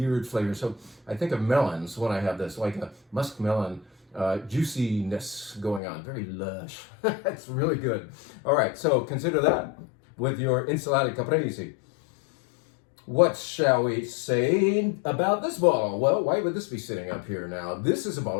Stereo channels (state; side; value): drops out; right; at 5.8 s